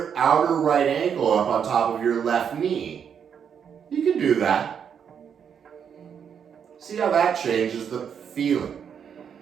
outer right ankle up on top of your left knee, you can do that. See how that changes the feeling.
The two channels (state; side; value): quieter; left; 7.7 dB